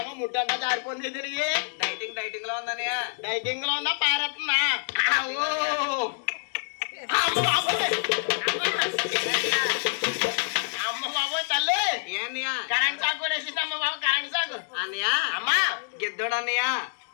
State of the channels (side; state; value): right; silent; digital silence